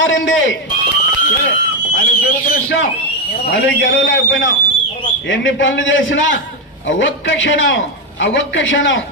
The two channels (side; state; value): both; normal; correlation 0.07